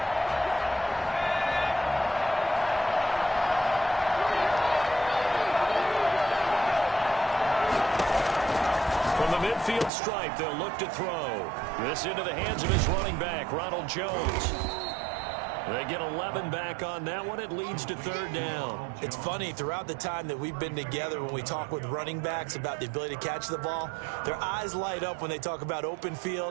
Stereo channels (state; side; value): drops out; left; at 9.9 s